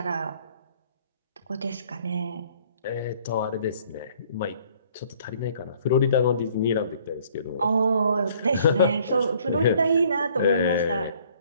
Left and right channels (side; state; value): both; inverted; correlation -0.59